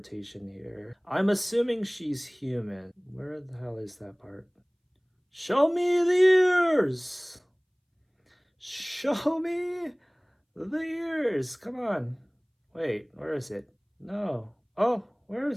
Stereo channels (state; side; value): identical; both; correlation 1.00